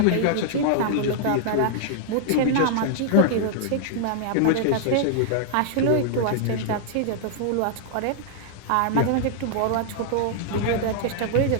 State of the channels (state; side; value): different; both; correlation -0.01